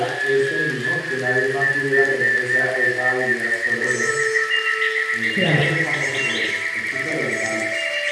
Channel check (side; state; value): both; identical; correlation 1.00